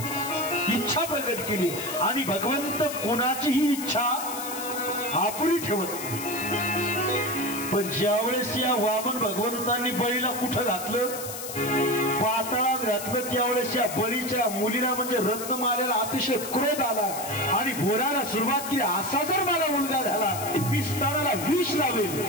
इच्छा प्रकट केली आणि भगवंत कोणाचीही इच्छा अपुरी ठेवत नाही. पण ज्यावेळेस या वामन भगवंतांनी बळीला कुठं घातलं, पाताळात घातलं, त्यावेळेस या बळीच्या मुलीला म्हणजे रत्नमालेला अतिशय क्रोध आला आणि बोलायला सुरुवात केली, असा जर मला मुलगा झाला मी स्तनाला विष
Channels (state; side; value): noise; left; hiss, 8 dB below the sound